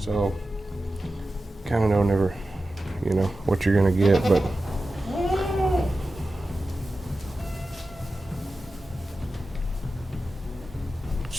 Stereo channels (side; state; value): both; normal; correlation 0.93